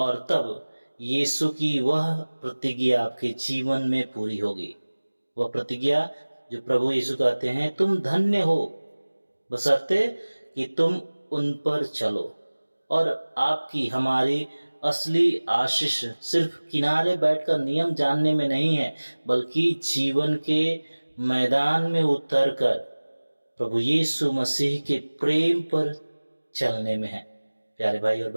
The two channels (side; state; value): both; inverted; correlation -1.00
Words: तब यीशु की वह प्रतिज्ञा आपके जीवन में पूरी होगी। वह प्रतिज्ञा जो प्रभु यीशु कहते हैं, तुम धन्य हो बशर्ते कि तुम उन पर चलो। और आपकी हमारी असली आशीष सिर्फ किनारे बैठकर नियम जानने में नहीं है, बल्कि जीवन के मैदान में उतरकर प्रभु यीशु मसीह के प्रेम पर चलने में है। प्यारे भाई और